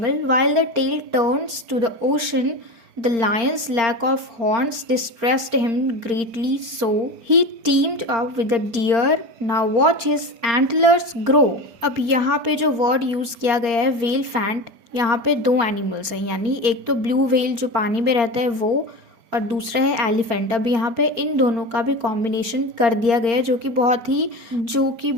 while the tail turns to the ocean, the lion's lack of horns distressed him greatly, so he teamed up with the deer, now watch his antlers grow. अब यहाँ पे जो word use किया गया है whale faint, यहाँ पे दो एनिमल्स हैं, यानी एक तो ब्लू व्हेल जो पानी में रहता है वो, और दूसरा है एलिफेंट। अब यहाँ पे इन दोनों का भी कॉम्बिनेशन कर दिया गया है, जो कि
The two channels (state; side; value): late; left; 4.4 ms